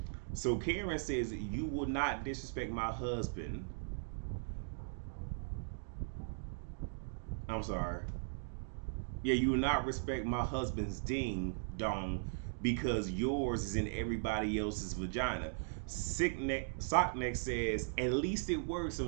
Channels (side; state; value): left; silent; digital silence